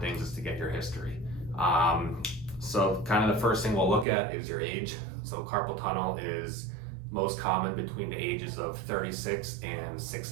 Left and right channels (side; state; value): left; drops out; at 4.0 s